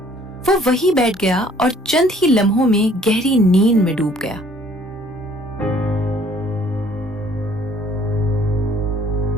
वो वहीं बैठ गया और चंद ही लम्हों में गहरी नींद में डूब गया।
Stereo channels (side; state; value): both; normal; correlation 0.58